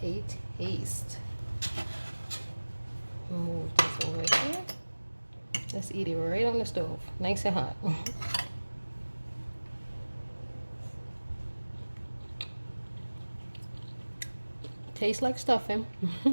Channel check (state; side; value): inverted; both; correlation -1.00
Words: a taste. Move this over here. Let's eat it right on the stove, nice and hot. Tastes like stuffing.